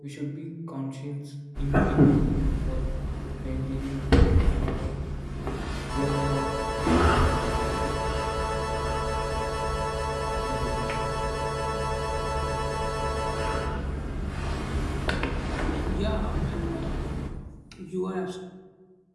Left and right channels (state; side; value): identical; both; correlation 1.00